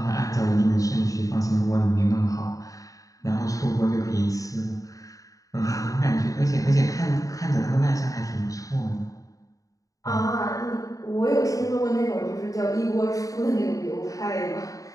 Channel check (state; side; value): late; right; 0.16 ms